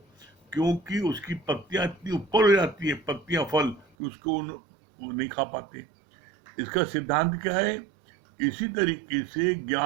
क्योंकि उसकी पत्तियां इतनी ऊपर हो जाती है, पत्तियां फल, कि उसको वो नहीं खा पाते। इसका सिद्धांत क्या है? इसी तरीके से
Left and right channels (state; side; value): drops out; left; at 3.9 s